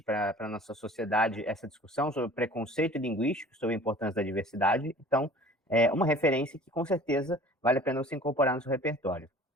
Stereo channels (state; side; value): normal; both; correlation 0.46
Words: para a nossa sociedade essa discussão sobre preconceito linguístico, sobre a importância da diversidade. Então, é uma referência que com certeza vale a pena você incorporar no seu repertório.